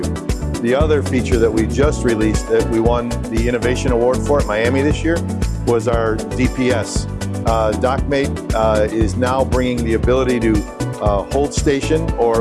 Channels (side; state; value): both; identical; correlation 1.00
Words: The other feature that we just released that we won the Innovation Award for at Miami this year was our DPS. Dockmate is now bringing the ability to hold station